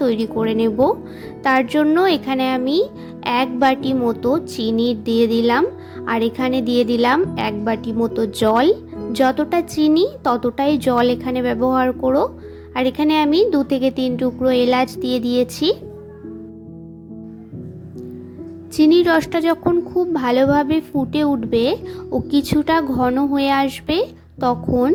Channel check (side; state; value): both; identical; correlation 1.00